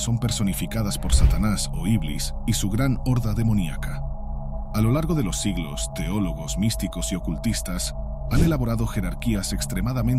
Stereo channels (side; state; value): both; identical; correlation 1.00